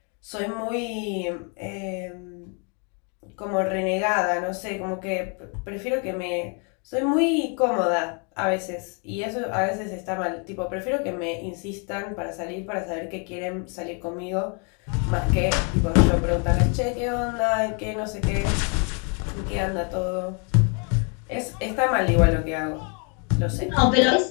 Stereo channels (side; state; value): right; quieter; 37.2 dB